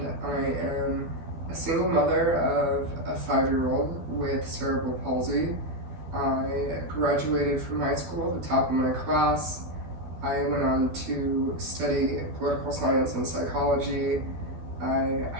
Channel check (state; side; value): late; left; 13 ms